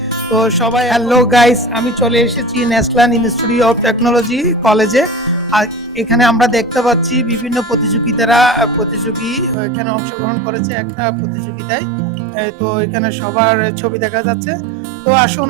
তো সবাই হ্যালো গাইস, আমি চলে এসেছি ন্যাশনাল ইনস্টিটিউট অফ টেকনোলজি কলেজে। আর এখানে আমরা দেখতে পাচ্ছি বিভিন্ন প্রতিযোগী এখানে অংশগ্রহণ করেছে একটা প্রতিযোগিতায়। তো এখানে সবার ছবি দেখা যাচ্ছে। তো আসুন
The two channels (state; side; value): drops out; left; at 9.6 s